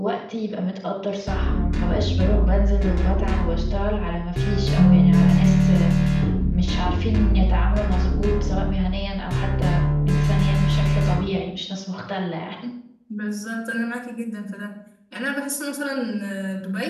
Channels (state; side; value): identical; both; correlation 1.00